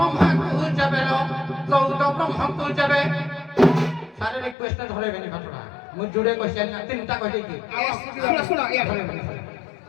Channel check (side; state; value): right; drops out; at 4.5 s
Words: ଯାବେ 14 ବ୍ରହ୍ମକୁ ଯାବେ सारे रिक्वेस्ट धरेबेनी घटना मु जुड़े क्वेश्चन ना तीनटा कह देकी ଶୁଣ ଶୁଣ